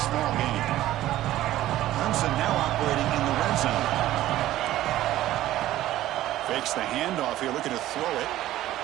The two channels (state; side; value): quieter; left; 14.4 dB